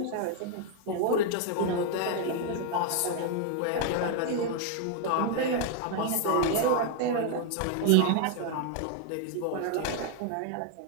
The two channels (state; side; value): different; both; correlation 0.00